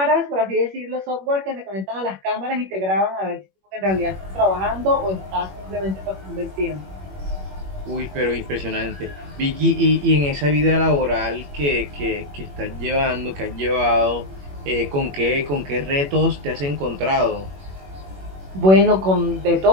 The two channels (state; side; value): late; left; 21 ms